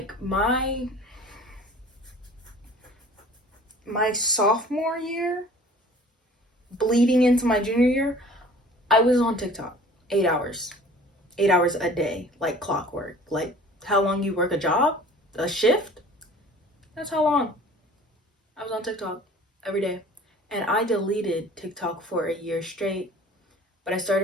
my sophomore year, bleeding into my junior year, I was on TikTok 8 hours. 8 hours a day, like clockwork. Like how long you work a job, a shift, that's how long I was on TikTok every day. And I deleted TikTok for a year straight, but I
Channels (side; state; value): both; normal; correlation 0.47